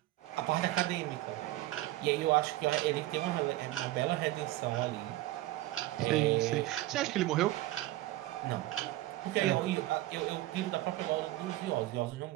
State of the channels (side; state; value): left; quieter; 16.6 dB